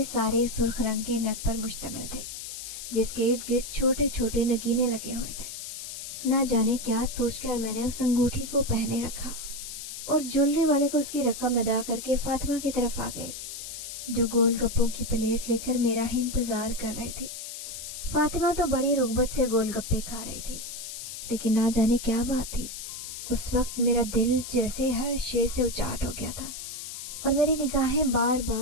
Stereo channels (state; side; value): noise; left; hiss, 9 dB below the sound